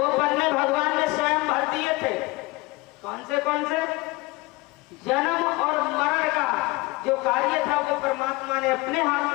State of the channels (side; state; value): right; quieter; 22.9 dB